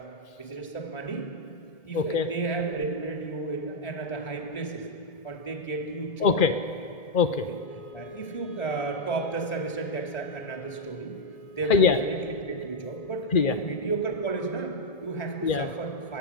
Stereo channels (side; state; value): right; late; 1.7 ms